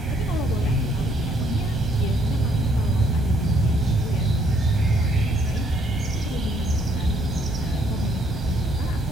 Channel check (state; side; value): normal; both; correlation 0.67